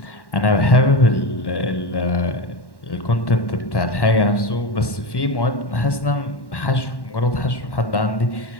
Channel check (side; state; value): right; late; 1.1 ms